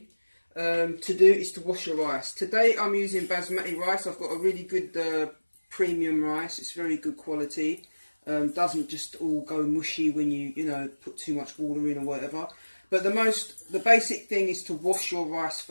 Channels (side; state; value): both; inverted; correlation -1.00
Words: to do is to wash your rice. Today, I'm using basmati rice. I've got a really good premium rice. It's very good quality. Doesn't just all go mushy when you put too much water in or whatever. But the basic thing is to wash your rice